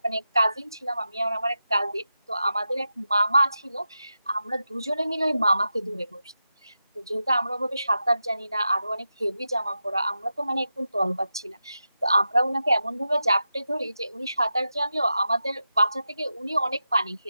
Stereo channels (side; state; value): both; inverted; correlation -0.90